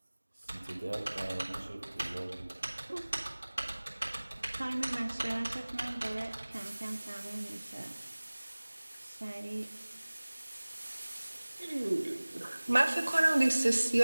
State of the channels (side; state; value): both; inverted; correlation -1.00